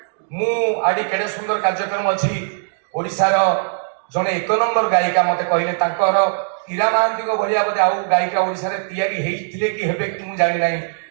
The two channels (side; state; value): left; silent; digital silence